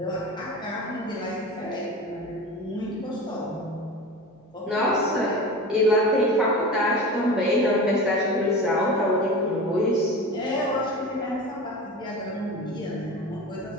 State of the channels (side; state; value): both; normal; correlation 0.31